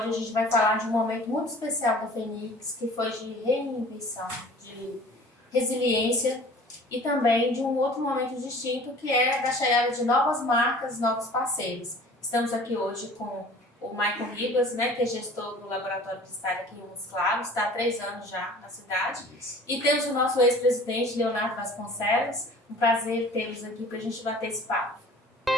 a gente vai falar de um momento muito especial da Fenix, que foi de reinvenção, de resiliência e também de um outro momento distinto, que é da chegada de novas marcas, novos parceiros. Estamos aqui hoje com o Michael Ribas, né, que é gestor do Laboratório de Estágio aqui em Montes Claros, está há 3 anos já na cidade. E temos o nosso ex-presidente, Leonardo Vasconcelos. Um prazer tê-los aqui para a gente bater esse papo.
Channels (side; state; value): both; normal; correlation 0.46